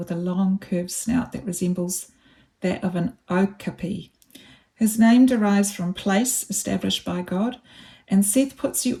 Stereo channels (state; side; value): identical; both; correlation 1.00